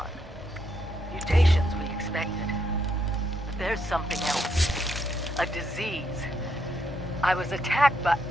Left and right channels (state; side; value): normal; both; correlation 0.77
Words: Mutations we expected. But there's something else. A disease. I was attacked by...